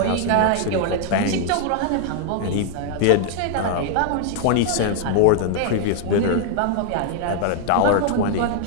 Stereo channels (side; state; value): both; different; correlation 0.00